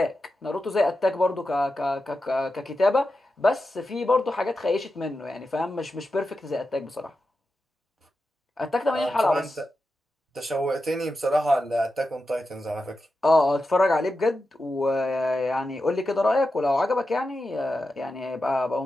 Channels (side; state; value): both; normal; correlation 0.90